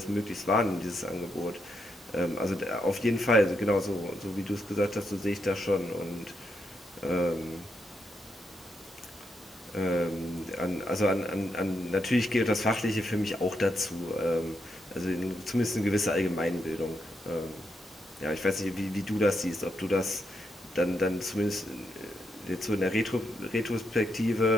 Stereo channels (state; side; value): normal; both; correlation 0.81